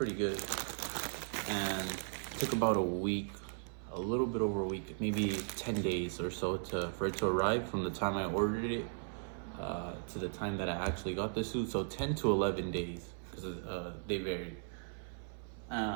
good, and it took about a week, a little bit over a week, maybe 10 days or so for it to arrive from the time I ordered it to the time that I actually got the suit. So 10 to 11 days, because they varied.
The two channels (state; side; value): silent; left; 53 dB below the other